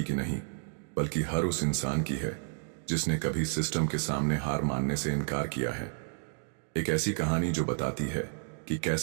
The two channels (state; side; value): silent; left; digital silence